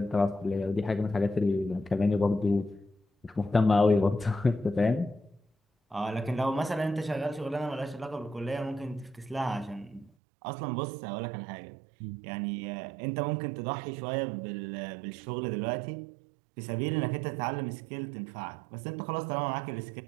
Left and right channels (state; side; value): drops out; left; at 10.1 s